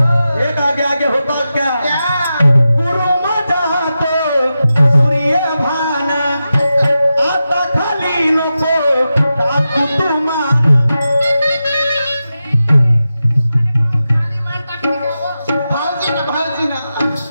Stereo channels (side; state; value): both; inverted; correlation -0.91